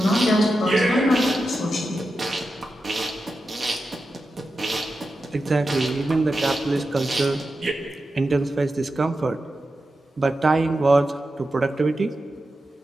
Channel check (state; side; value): normal; both; correlation 0.90